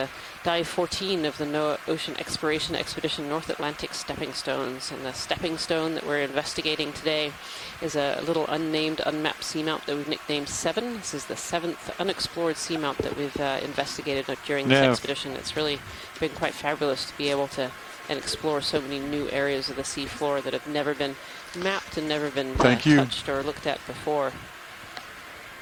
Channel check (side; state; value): both; identical; correlation 1.00